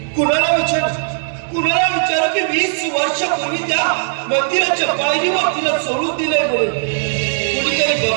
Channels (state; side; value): silent; left; 68 dB below the other